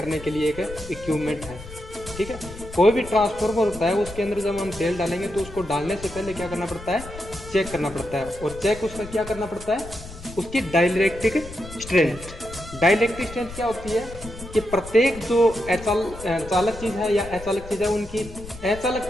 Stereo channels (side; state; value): left; noise; rumble, 14 dB below the sound